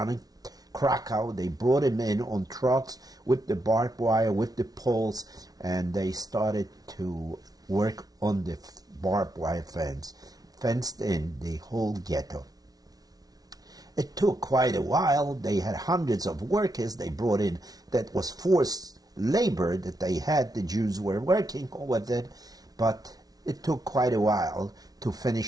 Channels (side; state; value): left; late; 0.18 ms